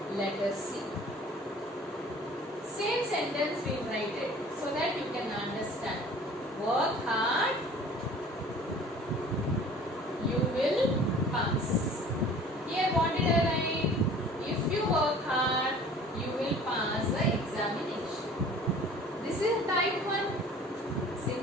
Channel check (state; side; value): normal; both; correlation 0.48